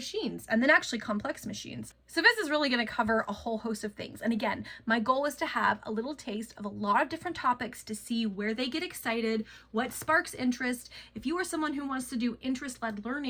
and then actually complex machines. So this is really going to cover a whole host of things. And again, my goal is to have a little taste of a lot of different topics to see where they get excited, what sparks interest. If you are someone who wants to do interest-led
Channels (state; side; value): identical; both; correlation 1.00